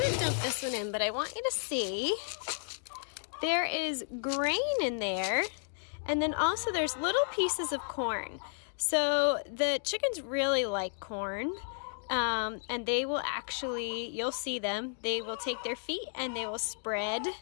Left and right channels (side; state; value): right; silent; digital silence